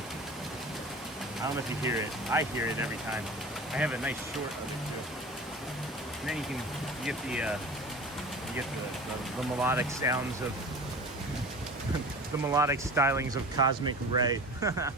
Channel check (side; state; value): both; normal; correlation 0.37